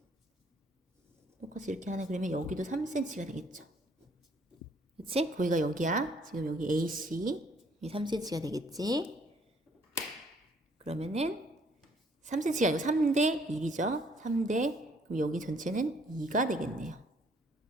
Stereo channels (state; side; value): normal; both; correlation 0.63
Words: 똑같이 이렇게 하나 그리면 여기도 3cm가 되겠죠. 그치? 거기가 여기야. 지금 여기 AC 이 3cm가 되겠지. 그러면은 3cm가 아니고 3대 1이죠. 3대, 그럼 여기 전체는 2가 되겠네요.